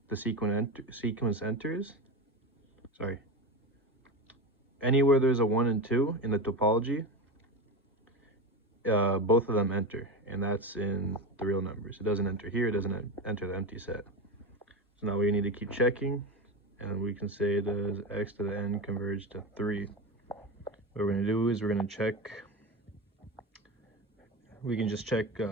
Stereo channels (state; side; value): normal; both; correlation 0.21